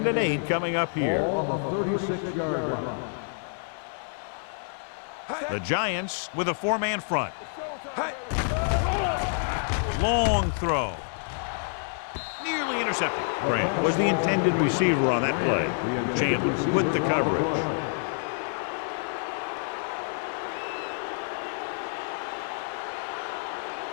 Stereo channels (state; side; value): silent; right; 59 dB below the other